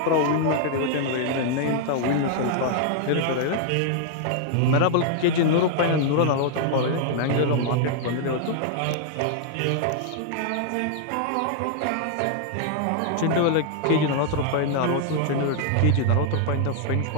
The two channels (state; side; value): different; both; correlation 0.00